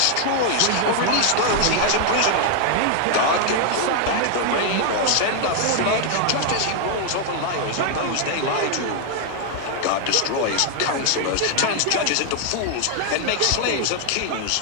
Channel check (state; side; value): different; both; correlation 0.00